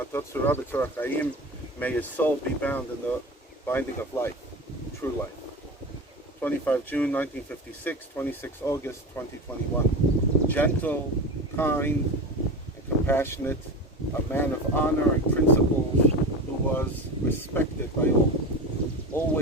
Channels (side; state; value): both; normal; correlation 0.27